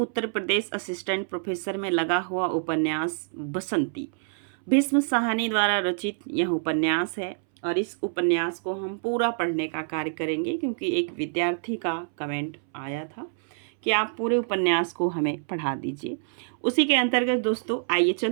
प्रदेश असिस्टेंट प्रोफेसर में लगा हुआ उपन्यास बसंती। भीष्म साहनी द्वारा रचित यह उपन्यास है और इस उपन्यास को हम पूरा पढ़ने का कार्य करेंगे क्योंकि एक विद्यार्थी का कमेंट आया था कि आप पूरे उपन्यास को हमें पढ़ा दीजिए। उसी के अंतर्गत दोस्तों आइए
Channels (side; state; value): left; silent; 60 dB below the other